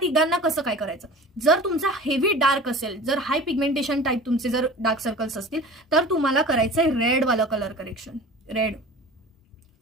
कसं काय करायचं? जर तुमचा हेवी डार्क असेल, जर हाय पिगमेंटेशन टाईप तुमचे जर डार्क सर्कल्स असतील, तर तुम्हाला करायचंय रेड वाला कलर करेक्शन.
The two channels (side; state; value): both; normal; correlation 0.39